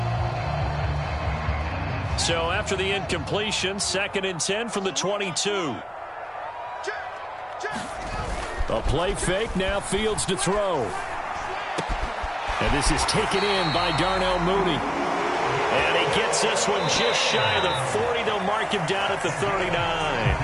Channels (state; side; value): identical; both; correlation 1.00